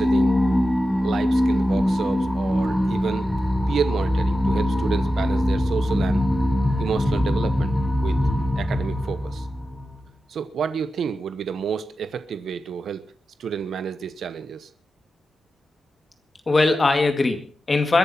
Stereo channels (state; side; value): normal; both; correlation 0.91